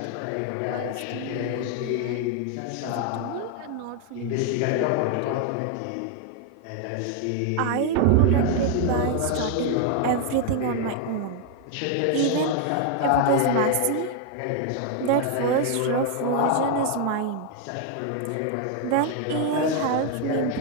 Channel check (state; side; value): different; both; correlation 0.00